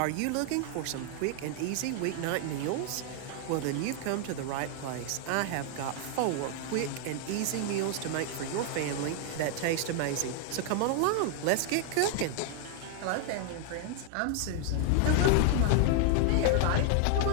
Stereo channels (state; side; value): different; both; correlation 0.00